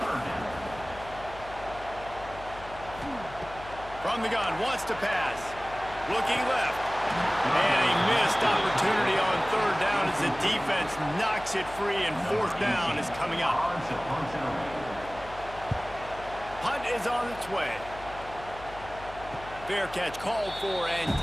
From the gun, wants to pass. Looking left. And a missed opportunity on third down as the defense knocks it free, and fourth down is coming up. Punt is on its way. Fair catch called for and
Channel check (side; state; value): left; noise; hum, 16 dB below the sound